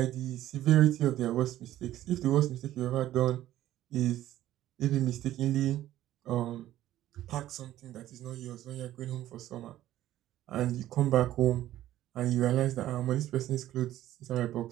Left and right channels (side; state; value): left; quieter; 13.7 dB